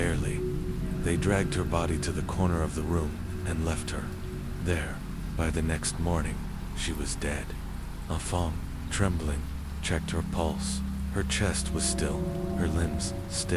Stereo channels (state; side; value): identical; both; correlation 1.00